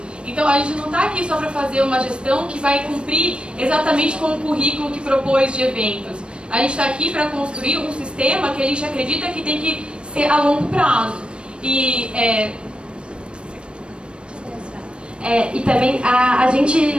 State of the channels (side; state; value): left; late; 0.057 ms